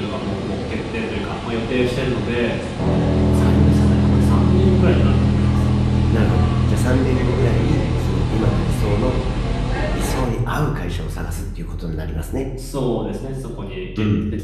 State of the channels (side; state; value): both; identical; correlation 1.00